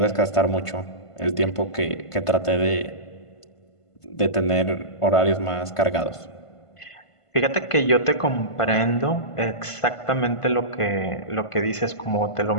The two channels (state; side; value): late; right; 1.5 ms